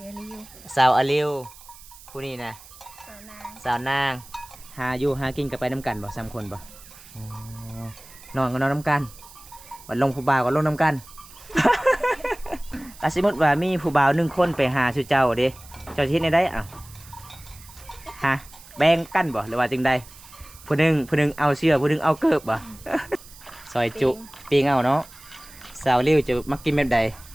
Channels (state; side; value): noise; right; hiss, 20 dB below the sound